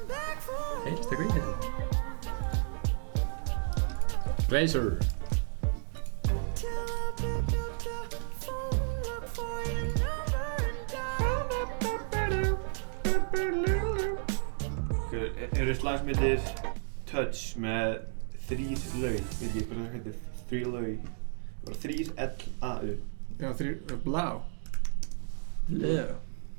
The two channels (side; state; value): left; silent; 56 dB below the other